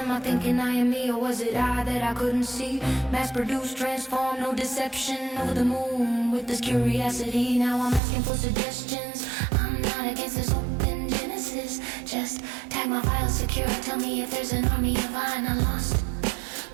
I thinking I am me, or was it I that I couldn't see? Mass-produced, transform, no deception, over the moon with this curiosity. Now I'm asking for suggestions. I'm not against this open genesis. Just tag my file secure, tell me if there's an army of mine I lost,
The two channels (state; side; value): drops out; left; at 8.0 s